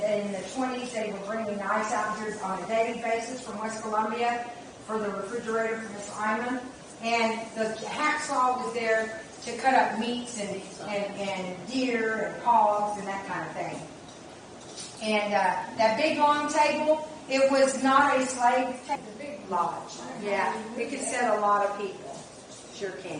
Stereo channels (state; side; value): identical; both; correlation 1.00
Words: in the 20s they were bringing ice out here on a daily basis from West Columbia for the refrigerator for Miss Iman. And the hacksaw was there to cut up meats and deer and hogs and that kind of thing. And that big long table, it was not a slave table, a big lodge. Yeah, it could sit a lot of people. Sure